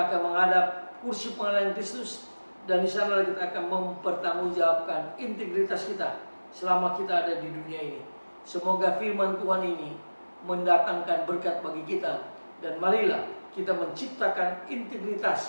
akan menghadap kursi pengadilan Kristus, dan di sana kita akan mempertanggungjawabkan integritas kita selama kita ada di dunia ini. Semoga firman Tuhan ini mendatangkan berkat bagi kita, dan marilah kita menciptakan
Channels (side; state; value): both; inverted; correlation -1.00